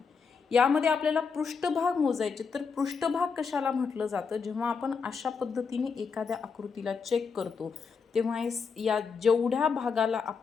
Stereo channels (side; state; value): right; quieter; 5.5 dB